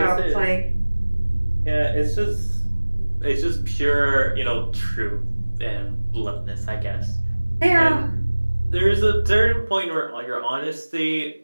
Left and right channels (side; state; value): both; inverted; correlation -1.00